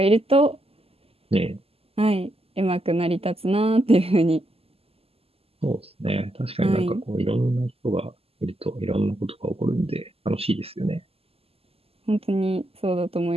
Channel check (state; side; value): late; left; 0.29 ms